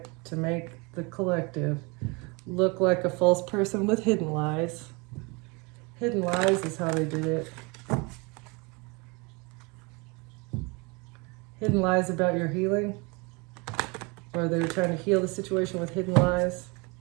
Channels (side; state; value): left; quieter; 28.7 dB